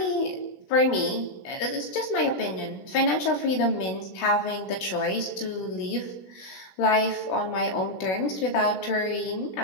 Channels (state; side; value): late; right; 16 ms